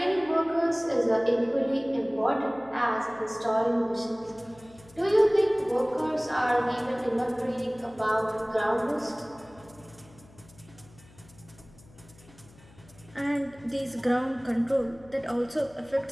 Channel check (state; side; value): noise; left; hum, 25 dB below the sound